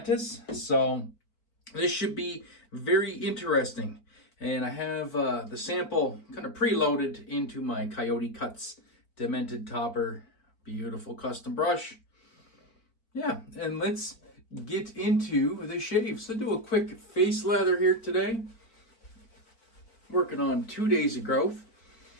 so this should be very interesting. And I have the sample kind of preloaded into my CoyoteCuts Demented topper. Beautiful custom brush. Yeah, and let's get into the shave. So do a quick face lather here today. Working on 2 days of growth.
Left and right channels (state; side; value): late; right; 4.5 ms